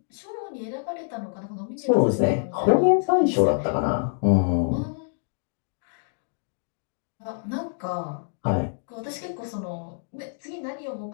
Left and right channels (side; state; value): right; silent; digital silence